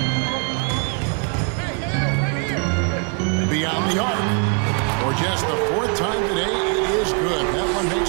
Beyond the arc. For just the 4th time today, it is good. That one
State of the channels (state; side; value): quieter; left; 39.9 dB